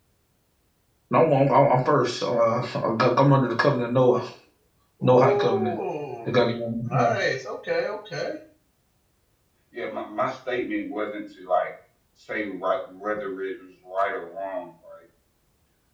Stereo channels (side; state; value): both; identical; correlation 1.00